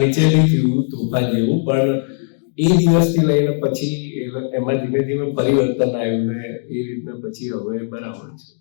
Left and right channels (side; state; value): right; silent; digital silence